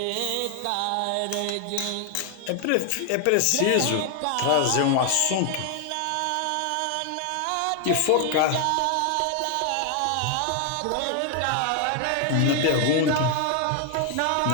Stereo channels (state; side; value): different; both; correlation 0.00